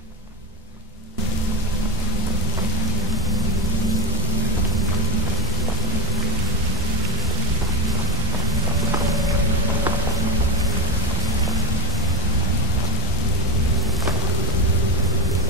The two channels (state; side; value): normal; both; correlation -0.07